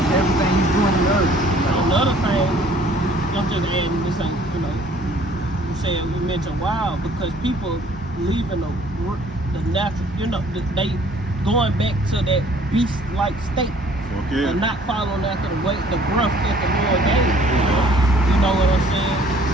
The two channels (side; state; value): both; normal; correlation 0.57